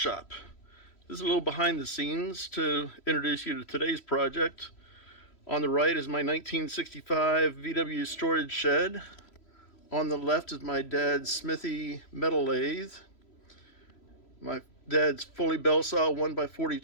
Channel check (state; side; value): late; right; 3.0 ms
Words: This is a little behind the scenes to introduce you to today's project. On the right is my 1965 VW storage shed. On the left is my dad's Smithy metal lathe. My dad's Foley bell saw